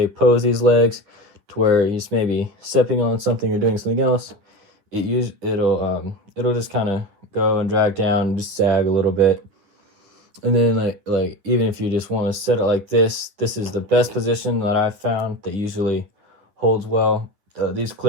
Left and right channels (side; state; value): left; late; 9.8 ms